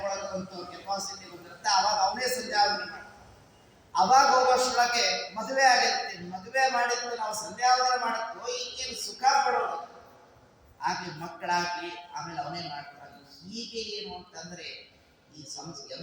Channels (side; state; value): both; identical; correlation 1.00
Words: ಕೆಪಾಸಿಟಿ ಬಂದಿರುತ್ತೆ, ಅವಾಗ ಅವನೇ ಸಂಧ್ಯಾವಂದನೆ ಮಾಡಿ. ಅವಾಗ ಹೋಗೋಷ್ಟೊಳಗೆ ಮದುವೆ ಆಗಿರುತ್ತೆ, ಮದುವೆ ಮಾಡಿದ್ದು ನಾವು ಸಂಧ್ಯಾವಂದನೆ ಮಾಡಕ್ಕೋ ಈಗೇನು ಸುಖ ಪಡೋದು, ಆಗ್ಲಿ ಮಕ್ಕಳಾಗ್ಲಿ ಆಮೇಲೆ ಅವನೇ ಮಾಡ್ತಾರೆ. ಹೀಗೆ ಏನು ಅಂತಂದ್ರೆ ಈ